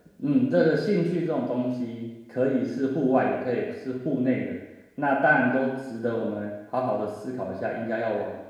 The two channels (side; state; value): both; identical; correlation 1.00